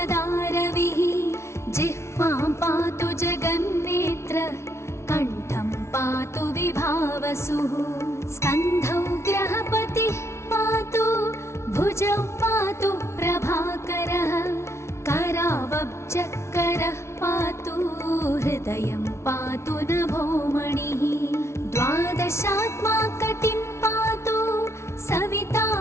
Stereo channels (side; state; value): right; late; 0.13 ms